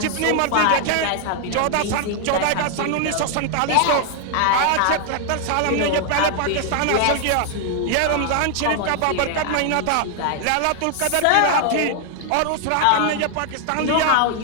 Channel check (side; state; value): both; different; correlation 0.00